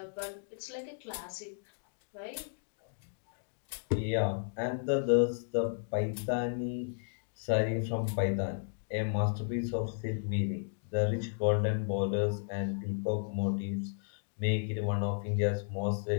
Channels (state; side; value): silent; right; digital silence